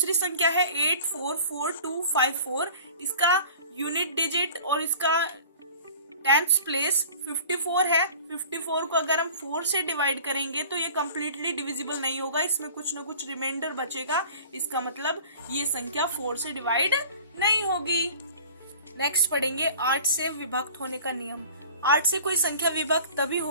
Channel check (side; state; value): both; inverted; correlation -0.44